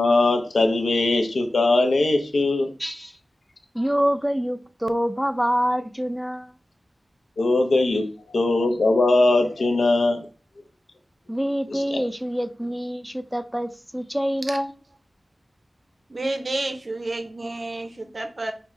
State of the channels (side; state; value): both; normal; correlation 0.95